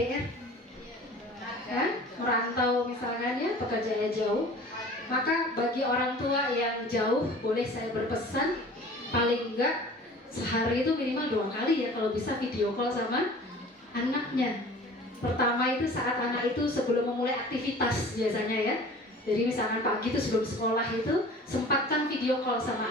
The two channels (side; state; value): both; normal; correlation 0.44